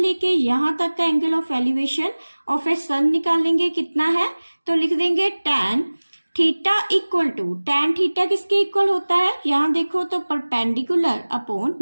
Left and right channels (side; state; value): both; inverted; correlation -1.00